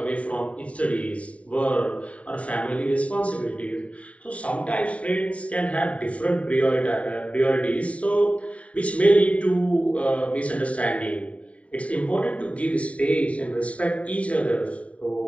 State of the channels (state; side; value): late; right; 0.066 ms